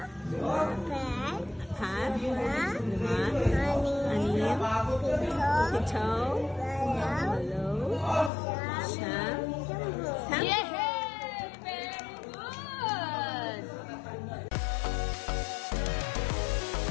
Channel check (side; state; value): right; drops out; at 8.3 s